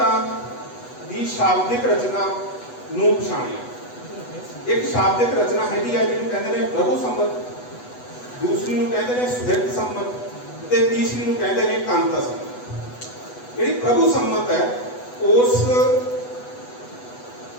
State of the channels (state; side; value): late; right; 8.1 ms